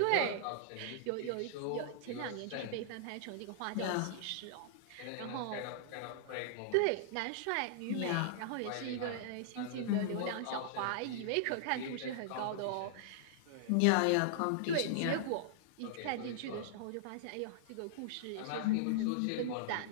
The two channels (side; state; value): both; different; correlation -0.01